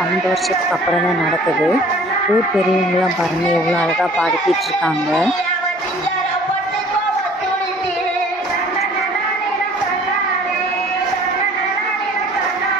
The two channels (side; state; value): both; normal; correlation 0.51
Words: 12 வருஷத்துக்கு அப்புறம் தான் நடக்குது. ஊர் பெரியவங்களாம் பாருங்கள் எவ்வளோ அழகாக பாடிக்கிட்டு இருக்காங்க.